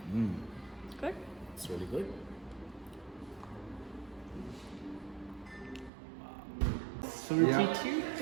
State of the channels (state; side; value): drops out; left; at 5.9 s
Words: Good. It's really good. 32?